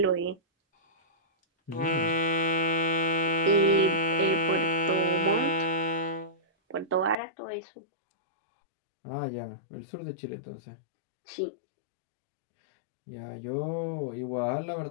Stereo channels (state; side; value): drops out; right; at 7.2 s